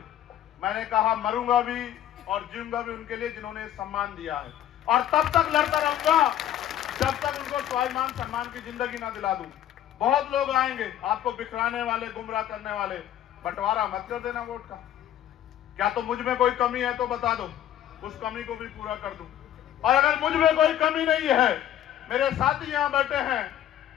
मैंने कहा मरूंगा भी और जीऊंगा भी उनके लिए जिन्होंने सम्मान दिया है, और तब तक लड़ता रहूंगा जब तक उनको स्वाभिमान सम्मान की जिंदगी ना दिला दूं। बहुत लोग आएंगे आपको बिखराने वाले, गुमराह करने वाले, बंटवारा मत कर देना वोट का। क्या तो मुझ में कोई कमी है तो बता दो, उस कमी को भी पूरा कर दूं। और अगर मुझ में कोई कमी नहीं है, मेरे साथी यहां बैठे हैं,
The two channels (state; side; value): quieter; right; 11.5 dB